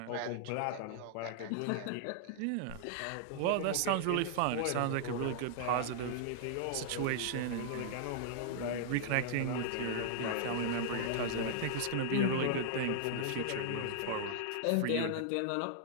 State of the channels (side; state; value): both; different; correlation -0.01